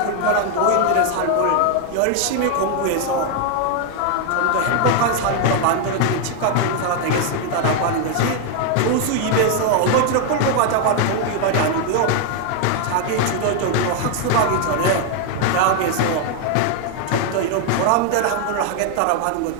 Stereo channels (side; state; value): both; different; correlation 0.00